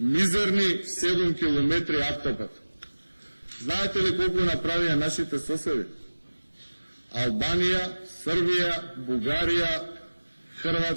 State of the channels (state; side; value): inverted; both; correlation -1.00